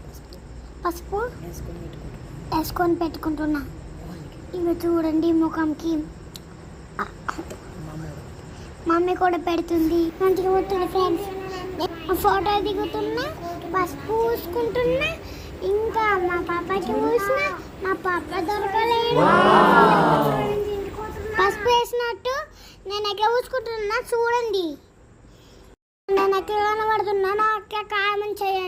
పసుపు వేసుకొని పెట్టుకుంటున్నా. ఇవి చూడండి ముఖంకి మమ్మీ కూడా పెడుతుంది. మంచిగా పోతుంది ఫ్రెండ్స్. ఫోటో దిగుతున్నా, పసుపు పూసుకుంటున్నా, ఇంకా మా పాపకి పూసిన మా పాప దొరకలేదు. పసుపు వేసినట్టు నేను ఎక్కడ పూసుకుంటున్నా చూడండి. నేను ఎక్కడ కనబడుతున్నా నాకు కామెంట్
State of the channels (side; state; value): both; identical; correlation 1.00